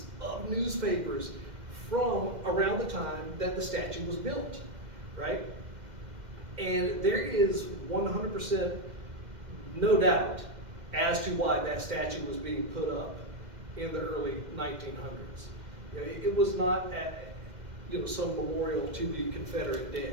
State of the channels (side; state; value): left; late; 2.1 ms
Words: of newspapers from around the time that the statue was built, right? And there is 100% no doubt as to why that statue was being put up in the early 1900s. You know, it was not some memorial to the Confederate